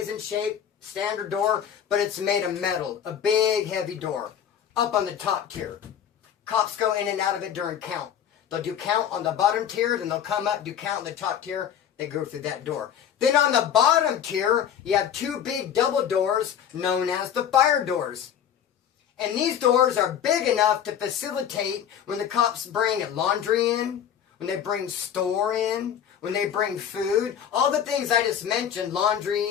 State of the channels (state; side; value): quieter; right; 9.1 dB